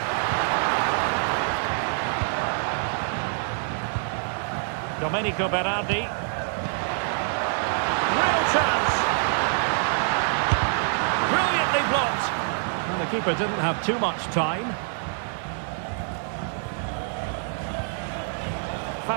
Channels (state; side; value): silent; left; 56 dB below the other